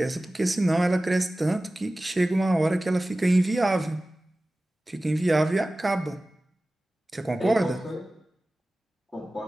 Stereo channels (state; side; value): normal; both; correlation 0.97